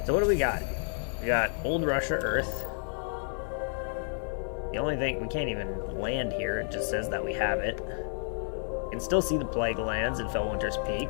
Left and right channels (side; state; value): right; silent; digital silence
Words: So what do we got? We got Old Russia Earth. The only thing, we can't even land here, it just says that we have it. You can still see the Plague Lands in Fellwinter's Peak.